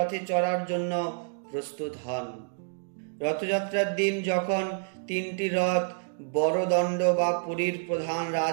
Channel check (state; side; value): silent; left; digital silence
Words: চড়ার জন্য প্রস্তুত হন। রথযাত্রার দিন যখন 3টি রথ বড়দণ্ড বা পুরীর প্রধান